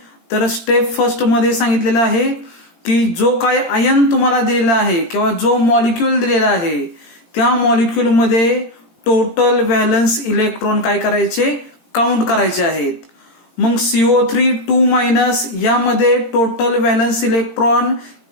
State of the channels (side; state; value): right; late; 18 ms